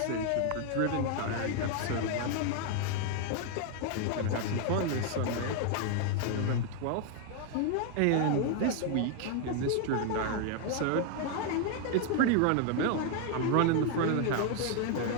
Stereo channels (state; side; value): different; both; correlation 0.00